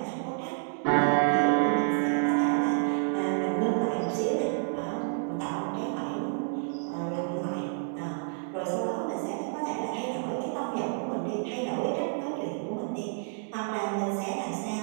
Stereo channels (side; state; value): left; silent; digital silence